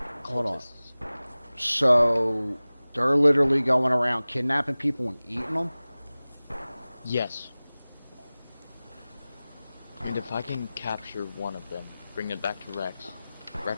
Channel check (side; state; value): both; inverted; correlation -0.98